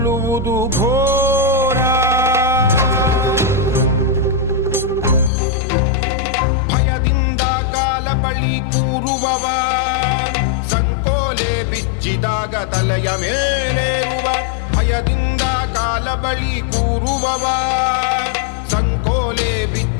ಘೋರ. ಭಯದಿಂದ ಕಾಲ ಬಳಿ ಕೂರುವವ, ಸಂಕೋಲೆ ಬಿಚ್ಚಿದಾಗ ತಲೆಯ ಮೇಲೇರುವ. ಭಯದಿಂದ ಕಾಲ ಬಳಿ ಕೂರುವವ, ಸಂಕೋಲೆ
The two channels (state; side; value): drops out; right; at 5.3 s